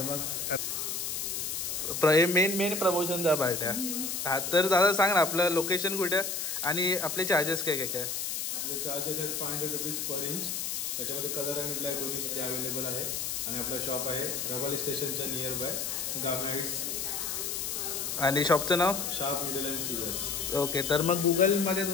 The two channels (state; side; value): noise; left; hiss, 2 dB below the sound